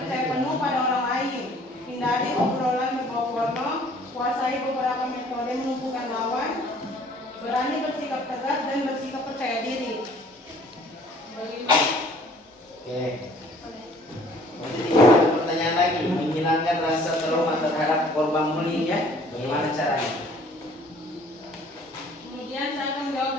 penuh pada orang lain. Hindari obrolan berbau porno. Kuasai beberapa metode melumpuhkan lawan. Berani bersikap tegas dan bersikap percaya diri. Oke. Jadi ada pertanyaan lagi, menghilangkan rasa trauma terhadap korban bullying ya? Bagaimana caranya? Kemudian saya akan menjawab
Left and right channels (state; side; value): normal; both; correlation 0.55